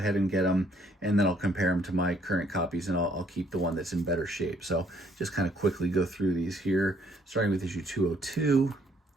and get them, and then I'll compare them to my current copies, and I'll keep the one that's in better shape. So just kind of quickly go through these here, starting with issue 202,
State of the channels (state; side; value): normal; both; correlation 0.65